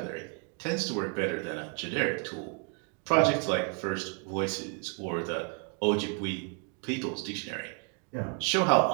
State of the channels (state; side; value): quieter; left; 39.0 dB